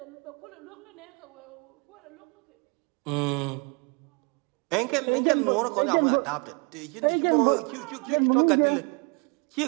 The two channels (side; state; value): left; quieter; 33.9 dB